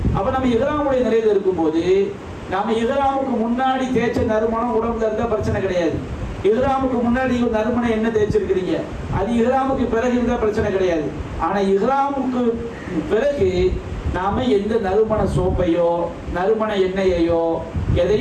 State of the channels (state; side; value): identical; both; correlation 1.00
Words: அப்ப நம்ம இஹ்ராமுடைய நிலையில இருக்கும்போது நாம இஹ்ராமுக்கு முன்னாடி தேய்ச்ச நறுமணம் உடம்புல இருந்தா பிரச்சனை கிடையாது. இஹ்ராமுக்கு முன்னாடி நறுமணம் என்ன தேய்ச்சிருக்கிறீங்க, அது இஹ்ராமுக்கு பிறகு இருந்தா பிரச்சனை கிடையாது. ஆனா இஹ்ராமுக்கு பிறகு நாம எந்த நறுமண சோப்பையோ நறுமண எண்ணெயையோ